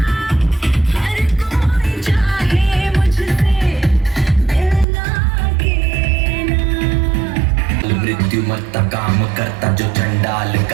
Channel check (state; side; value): drops out; left; at 4.9 s